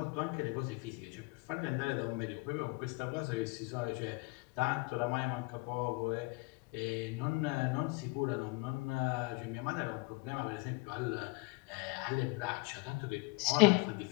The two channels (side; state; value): right; quieter; 27.5 dB